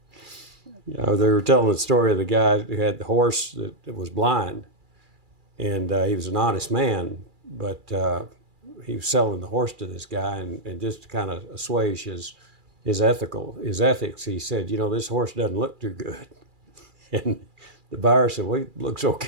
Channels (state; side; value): late; left; 2.4 ms